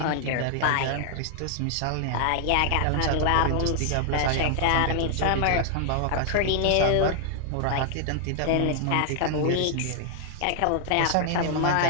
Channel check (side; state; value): both; different; correlation 0.00